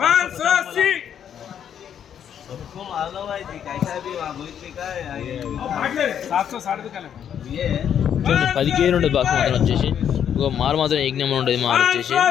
580 చూడండి 10 కేజీలు ఉంటుంది బాక్స్ మాత్రం వచ్చేసి. ఇంకో మాల్ మాత్రం ఏక్ నెంబర్ ఉంటుంది. మాల్ వచ్చేసి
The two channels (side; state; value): right; quieter; 9.0 dB